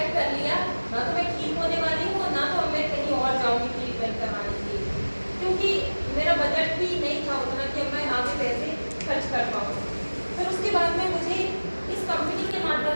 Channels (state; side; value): inverted; both; correlation -1.00